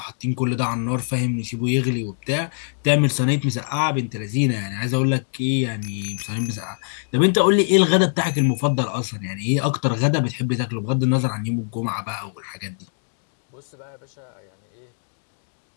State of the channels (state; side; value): silent; right; digital silence